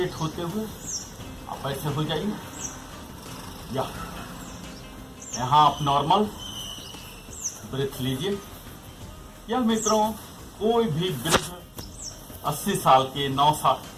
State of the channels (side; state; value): both; identical; correlation 1.00